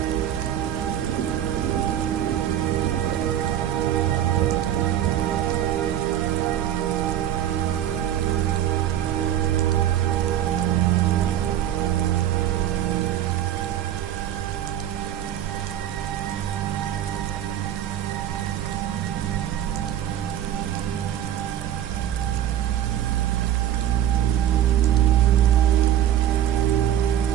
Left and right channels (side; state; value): left; quieter; 11.2 dB